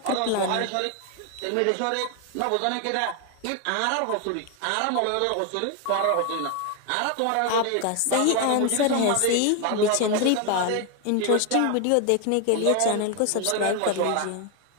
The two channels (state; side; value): different; both; correlation 0.01